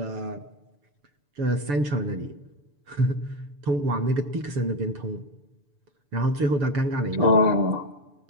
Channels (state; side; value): late; left; 6.9 ms